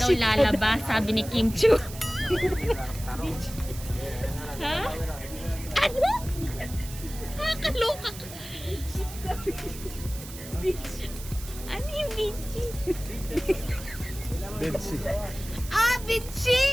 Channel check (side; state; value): right; noise; hiss, 14 dB below the sound